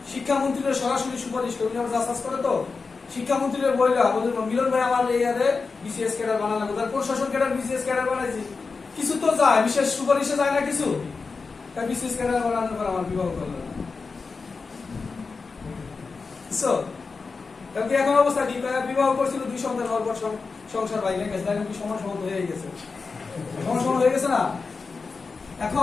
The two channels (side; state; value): right; quieter; 4.5 dB